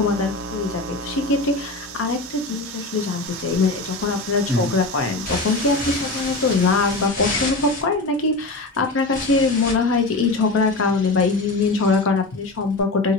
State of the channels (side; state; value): right; quieter; 3.1 dB